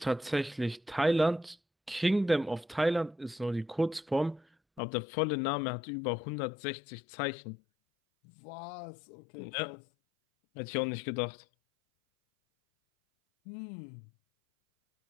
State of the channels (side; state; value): right; drops out; at 4.8 s